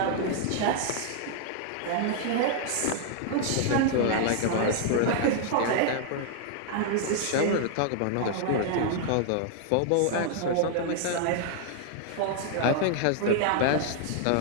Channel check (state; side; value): different; both; correlation -0.01